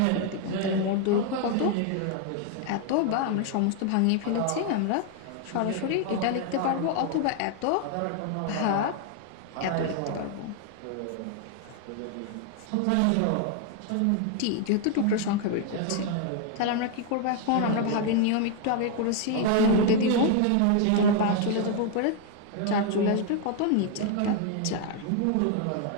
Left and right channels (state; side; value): different; both; correlation 0.00